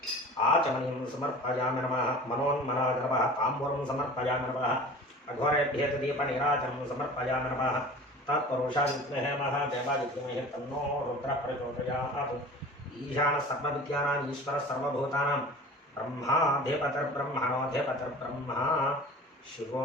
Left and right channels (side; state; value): both; normal; correlation 0.40